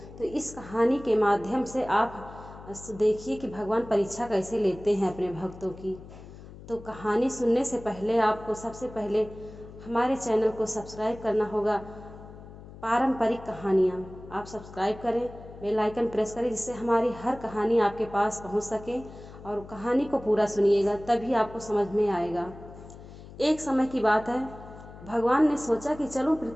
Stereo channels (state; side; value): noise; left; hum, 16 dB below the sound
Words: तो इस कहानी के माध्यम से आप देखिए कि भगवान परीक्षा कैसे लेते हैं अपने भक्तों की। तो कहानी सुनने से पहले आपको सबसे पहले हमारे चैनल को सब्सक्राइब करना होगा। पारंपरिक कहानियाँ आप सब्सक्राइब करें, बेल आइकन प्रेस करें, जिससे हमारी हर कहानी आपके पास पहुंच सके। और कहानी को पूरा सुनिएगा, तभी आपको समझ में आएगा। एक समय की बात है, भगवान ने सोचा कि चलो